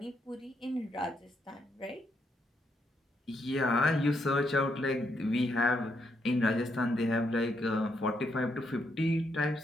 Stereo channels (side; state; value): both; normal; correlation 0.77